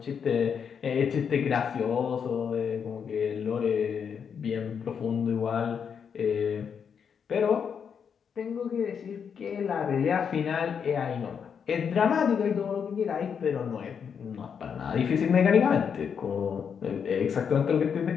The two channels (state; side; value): quieter; right; 7.0 dB